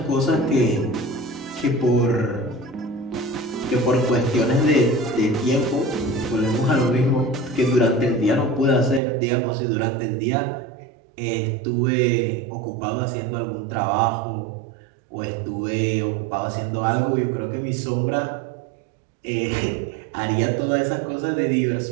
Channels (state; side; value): drops out; left; at 9.0 s